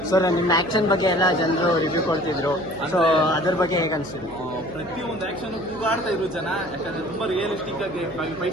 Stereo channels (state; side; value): noise; right; hum, 20 dB below the sound